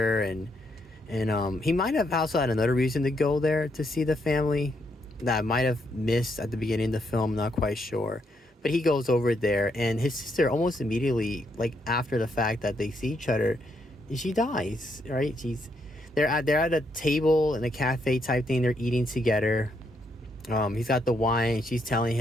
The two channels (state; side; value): normal; both; correlation 0.76